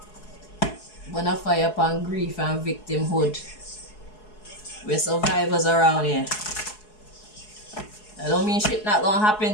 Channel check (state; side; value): late; right; 4.7 ms